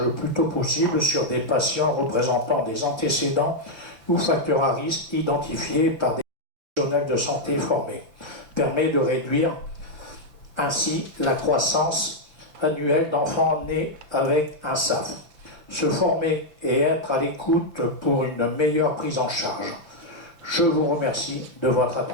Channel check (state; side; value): late; left; 5.9 ms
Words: le plus tôt possible sur des patients représentant des antécédents ou facteurs à risque identifiés par des professionnels de santé formés. Permet de réduire ainsi la croissance annuelle d'enfants nés avec un SAF. Se former et être à l'écoute pour une meilleure prise en charge. Je vous remercie de votre